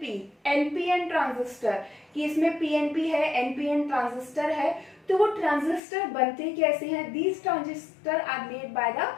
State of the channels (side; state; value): right; drops out; at 5.8 s